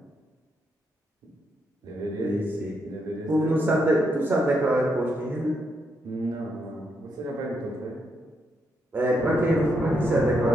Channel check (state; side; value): normal; both; correlation 0.79